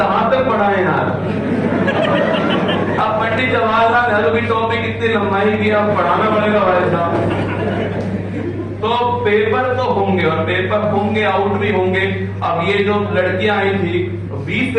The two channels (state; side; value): identical; both; correlation 1.00